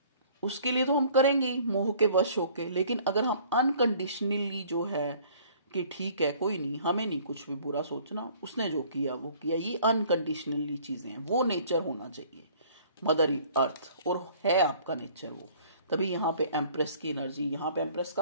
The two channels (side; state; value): both; inverted; correlation -0.54